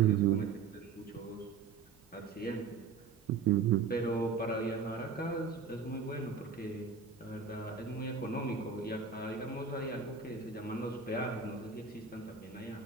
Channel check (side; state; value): left; quieter; 5.5 dB